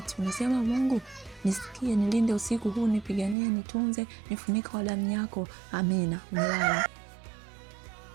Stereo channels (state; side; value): drops out; left; at 3.4 s